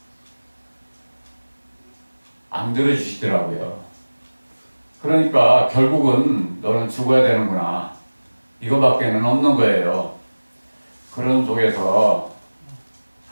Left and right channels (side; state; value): both; inverted; correlation -1.00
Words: 안 들어주시더라고요. 그러니까 결국은 너는 죽어야 되는구나. 이거밖에는 없는 거예요. 그런 속에서